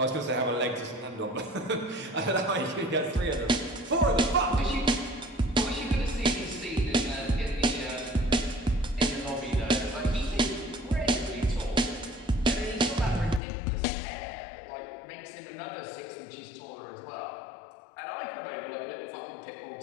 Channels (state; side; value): drops out; right; at 13.4 s